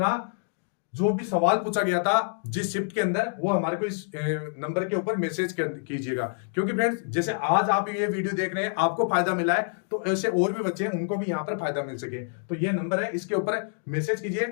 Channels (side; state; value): right; silent; digital silence